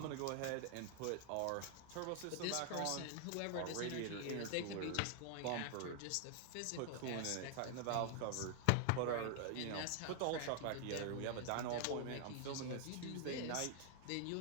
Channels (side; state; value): both; different; correlation 0.00